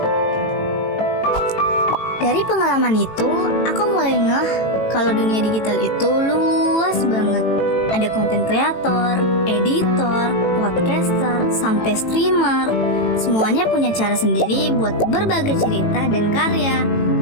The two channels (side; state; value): right; late; 18 ms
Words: Dari pengalaman itu, aku mulai ngeh kalau dunia digital itu luas banget. Ada konten kreator, editor, podcaster, sampai streamer. Semuanya punya cara sendiri buat berbagai cerita dan karya.